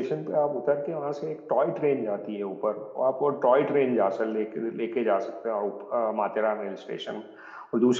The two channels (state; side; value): identical; both; correlation 1.00